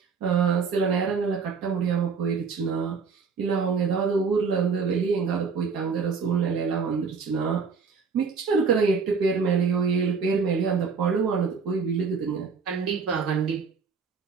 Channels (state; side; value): quieter; left; 5.4 dB